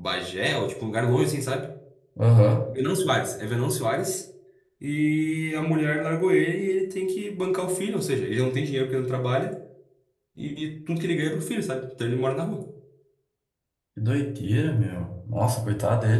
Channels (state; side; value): identical; both; correlation 1.00